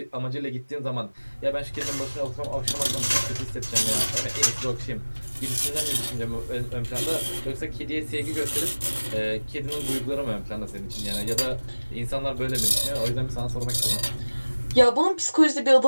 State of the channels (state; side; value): inverted; both; correlation -1.00